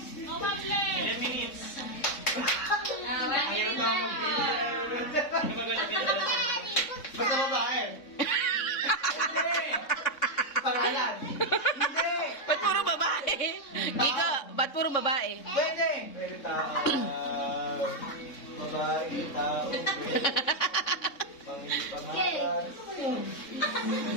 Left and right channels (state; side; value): late; right; 3.6 ms